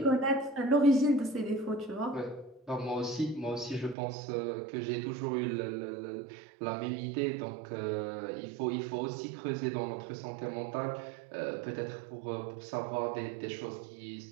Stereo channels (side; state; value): left; drops out; at 4.0 s